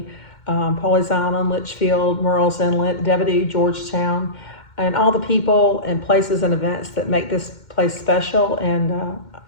Pawleys Island, Litchfield, Murrells Inlet, Devido, Georgetown, and all the people and places and events that make this place special,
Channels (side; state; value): right; late; 2.1 ms